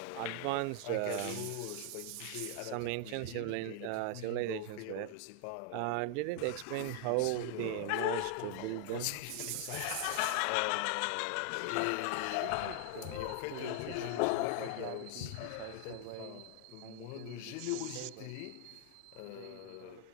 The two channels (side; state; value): both; different; correlation 0.00